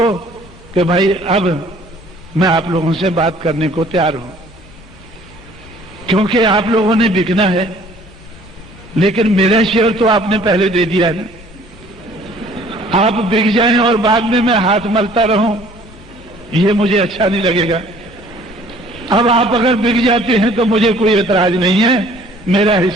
कि भाई अब मैं आप लोगों से बात करने को तैयार हूं, क्योंकि आप लोगों ने बिकना है, लेकिन मेरा शेयर तो आपने पहले दे दिया है ना। आप बिक जाएं और बाद में मैं हाथ मलता रहूं, ये मुझे अच्छा नहीं लगेगा। अब आप अगर बिक जाते हैं तो मुझे कोई एतराज नहीं है, मेरा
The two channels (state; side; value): normal; both; correlation 0.55